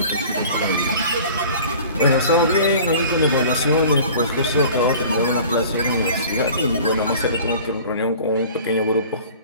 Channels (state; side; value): inverted; both; correlation -0.45